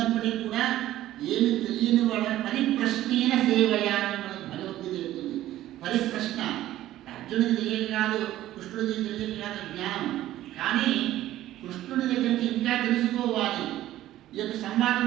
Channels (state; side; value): quieter; left; 14.1 dB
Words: కూడా ఏమి తెలియని వాడ పరిప్రశ్నేన సేవయాన్ని మనకు భగవద్గీత చెప్తుంది. పరిప్రశ్న అర్జునుడికి తెలియదు కాదు, కృష్ణుడికి తెలియదు కాదు జ్ఞానం. కానీ కృష్ణుడి దగ్గర నుంచి ఇంకా తెలుసుకోవాలి. ఈ యొక్క సంవాదం